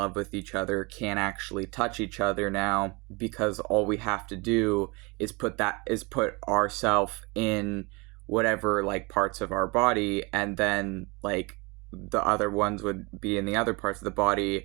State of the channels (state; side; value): quieter; left; 27.3 dB